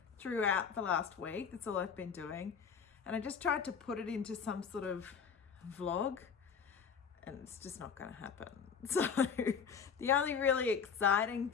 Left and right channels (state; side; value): quieter; right; 6.6 dB